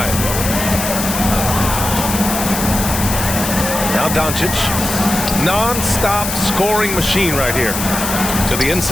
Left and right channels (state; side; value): noise; left; hiss, 4 dB below the sound